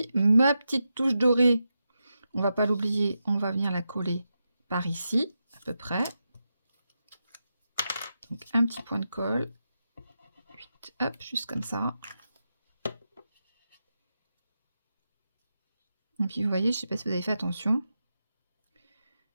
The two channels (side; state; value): both; inverted; correlation -0.88